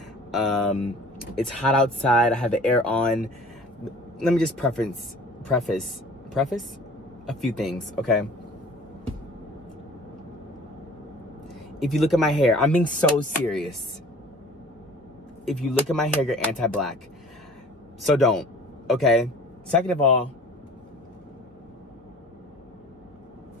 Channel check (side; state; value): both; normal; correlation 0.47